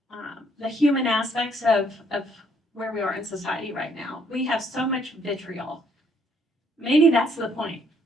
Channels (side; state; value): both; normal; correlation 0.67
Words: the human aspects of where we are in society right now. We have so much vitriol. Maybe that's the point.